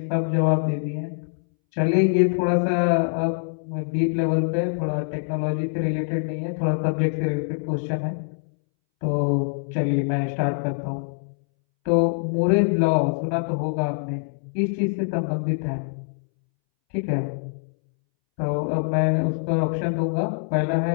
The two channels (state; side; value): silent; right; 63 dB below the other